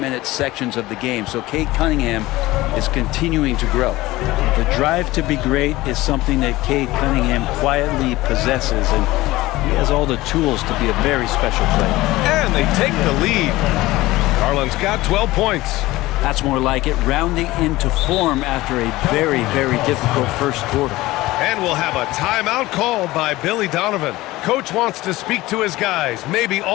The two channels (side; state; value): right; quieter; 18.5 dB